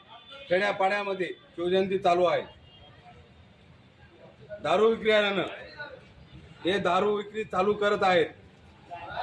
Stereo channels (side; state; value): both; identical; correlation 1.00